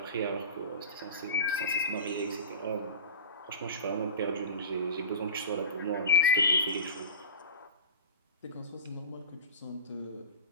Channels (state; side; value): inverted; both; correlation -0.31